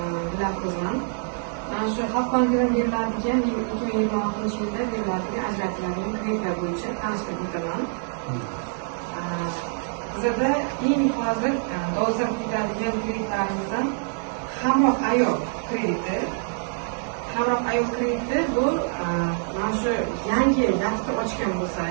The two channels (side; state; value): left; silent; 61 dB below the other